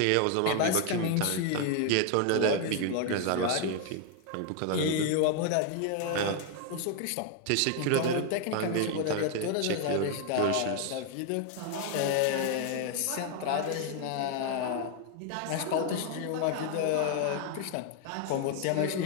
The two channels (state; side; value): different; both; correlation 0.01